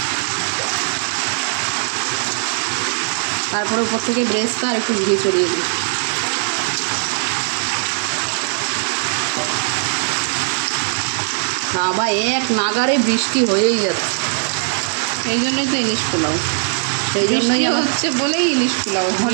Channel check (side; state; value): left; silent; 55 dB below the other